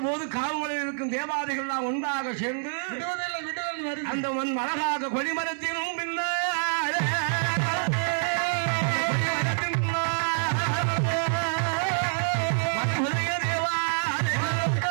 போது காவலில் இருக்கும் தேவாதைகள் எல்லாம் ஒன்றாக சேர்ந்து அந்த அழகாக கொடிமரத்தினும் பின்னால்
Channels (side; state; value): left; silent; 58 dB below the other